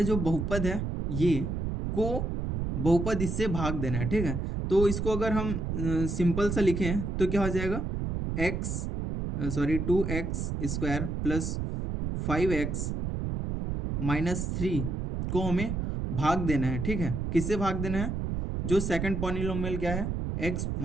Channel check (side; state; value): right; noise; rumble, 2 dB below the sound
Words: हैं, जो बहुपद है ये को बहुपद इससे भाग देना है। ठीक है, तो इसको अगर हम सिंपल सा लिखें तो क्या हो जाएगा, एक्स 2x² + 5x - 3 को हमें भाग देना है। ठीक है, किससे भाग देना है, जो सेकंड पॉलिनोमियल क्या है, x